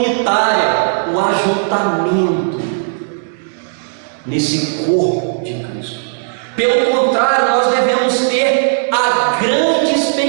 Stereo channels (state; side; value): silent; left; digital silence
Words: o ajuntamento nesse corpo de Cristo. Pelo contrário, nós devemos ter a grande